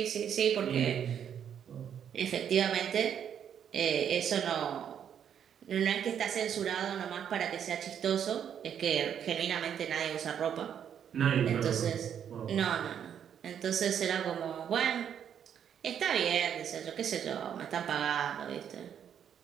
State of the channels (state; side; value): quieter; left; 8.7 dB